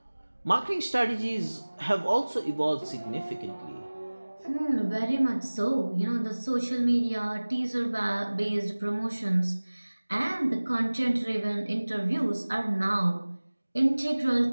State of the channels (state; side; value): inverted; both; correlation -1.00